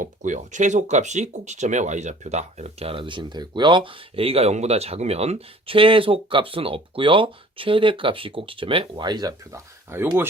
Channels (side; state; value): both; normal; correlation 0.50